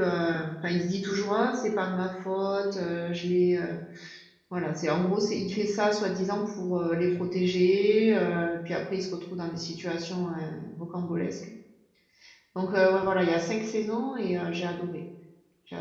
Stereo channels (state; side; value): identical; both; correlation 1.00